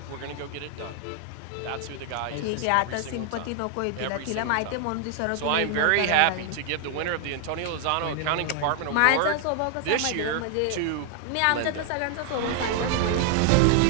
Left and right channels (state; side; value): different; both; correlation 0.00